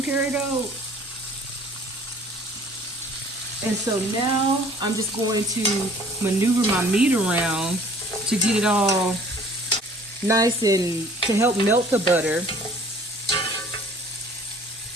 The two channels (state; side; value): normal; both; correlation 0.52